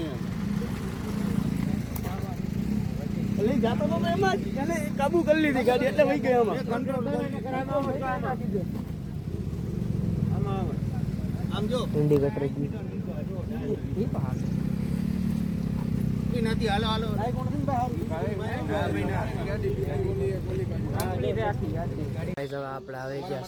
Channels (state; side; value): identical; both; correlation 1.00